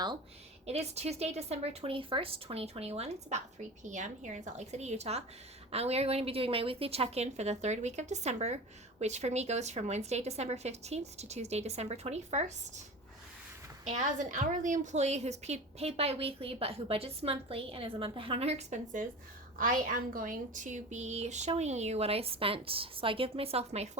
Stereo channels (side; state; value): both; normal; correlation 0.32